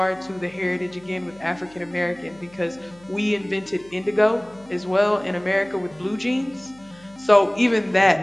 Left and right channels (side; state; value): left; noise; hum, 26 dB below the sound